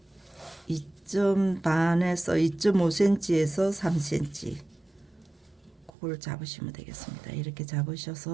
반에서 2.5cm에서 3cm 그걸 잡으시면 되겠습니다. 이렇게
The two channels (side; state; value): left; drops out; at 5.9 s